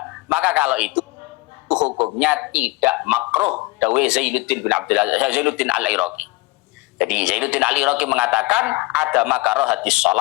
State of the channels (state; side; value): quieter; right; 22.6 dB